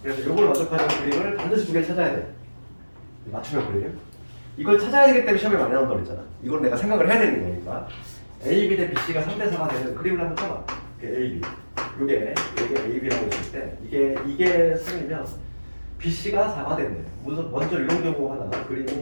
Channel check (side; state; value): both; inverted; correlation -1.00